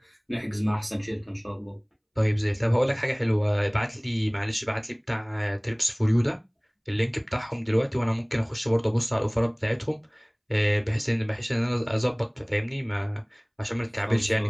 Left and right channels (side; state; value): both; identical; correlation 1.00